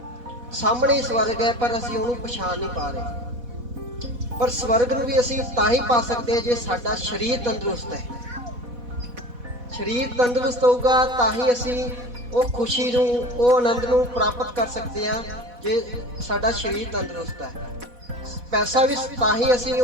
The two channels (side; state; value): left; late; 4.1 ms